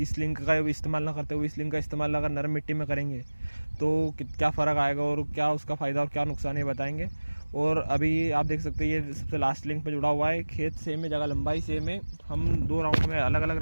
लिंक का इस्तेमाल ना करते हुए इस लिंक का इस्तेमाल अगर नरम मिट्टी में करेंगे तो क्या फ़र्क आएगा और क्या उसका फ़ायदा और क्या नुकसान है बताएंगे। और अभी आप देख सकते हैं ये सबसे लास्ट लिंक पे जुड़ा हुआ है, खेत सेम है, जगह लंबाई सेम है। हम 2 राउंड में, अलग अलग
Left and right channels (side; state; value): both; inverted; correlation -1.00